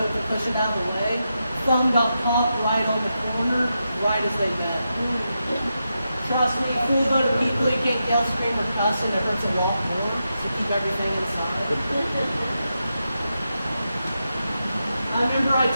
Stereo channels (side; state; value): both; inverted; correlation -0.87